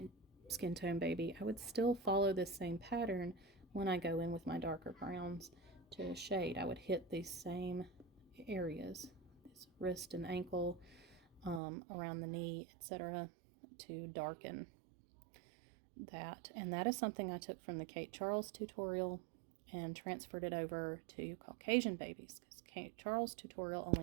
skin tone baby, I would still follow this same pattern when I go in with my darker browns to shade. I would hit these same areas, this wrist and ankle, around the knee, etc., to darken that. And that is something I took from the Kate Charles tutorial and transferred it over to Caucasian babies, because Kate Charles tutorial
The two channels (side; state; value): left; drops out; at 11.6 s